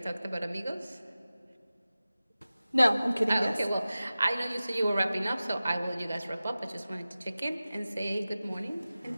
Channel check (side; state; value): both; inverted; correlation -0.96